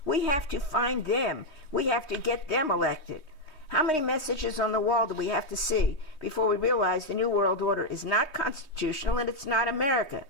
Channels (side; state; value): right; late; 3.2 ms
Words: We have to find them. We have to get them elected. How many messages on the wall do we have to see before we realize the New World Order is not constitutional and it's not America?